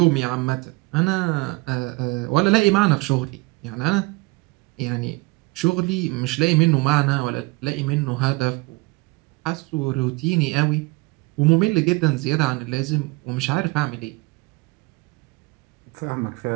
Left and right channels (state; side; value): quieter; left; 24.7 dB